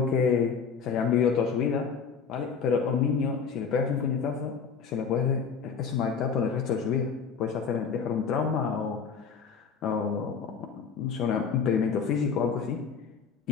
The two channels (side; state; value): right; quieter; 6.0 dB